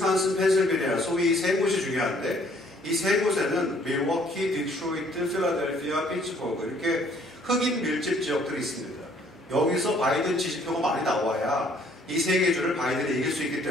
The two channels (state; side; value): normal; both; correlation 0.61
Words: 펜실베니아 소위 세 곳이 중요한데 이 세 곳에는 밀워키, 디트로이트, 필라델피아, 피츠버그 이렇게 흑인 밀집 지역들이 있습니다. 여기서 바이든 지지표가 많이 나와야 이 세 개 주를 바이든이 이길 수 있기